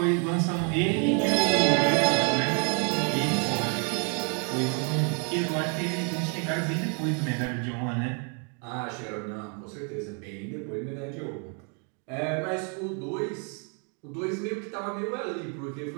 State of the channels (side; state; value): left; quieter; 39.4 dB